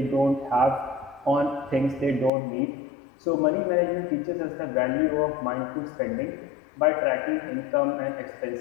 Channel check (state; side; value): drops out; right; at 2.3 s